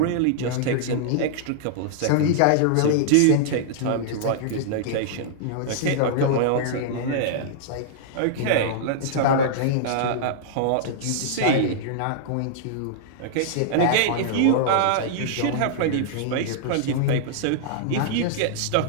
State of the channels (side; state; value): both; different; correlation -0.01